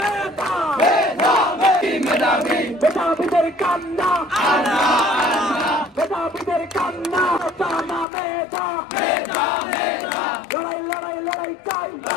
মেধাবীদের কান্না, মেধাবীদের কান্না, কোটা না মেধা, লড়াই লড়াই লড়াই চাই,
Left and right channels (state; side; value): drops out; right; at 8.1 s